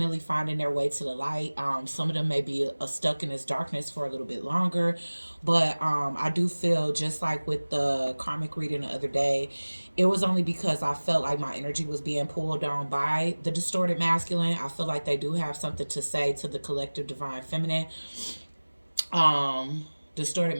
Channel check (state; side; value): inverted; both; correlation -1.00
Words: finding their way to the light. Some of them may be stuck in this darkness for a little bit longer, but I do feel just like with the karmic reading the other day, it was only because I felt like my energy was being pulled down by the distorted masculine. I feel like they do have something to say to the collective divine feminine. Distorted